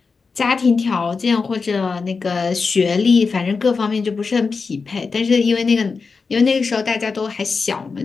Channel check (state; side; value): quieter; right; 4.7 dB